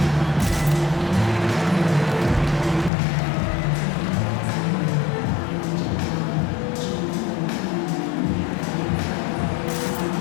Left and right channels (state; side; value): drops out; right; at 2.9 s